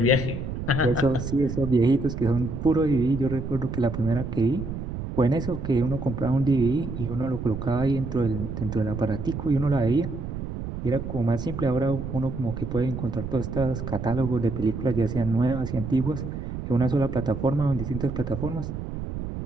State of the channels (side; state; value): right; noise; rumble, 6 dB below the sound